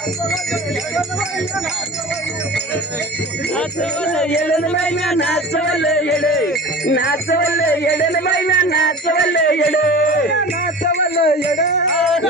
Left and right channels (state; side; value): normal; both; correlation 0.36